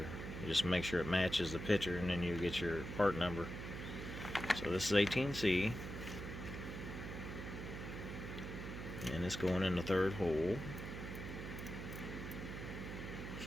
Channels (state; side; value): noise; right; hum, 7 dB below the sound